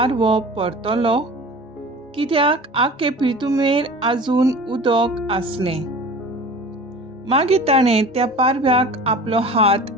परतलो, कित्याक आख्खे पृथ्वीर आजून उदक आसलें. मागीर ताणें त्या पारव्याक आपलो हात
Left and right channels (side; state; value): both; normal; correlation 0.39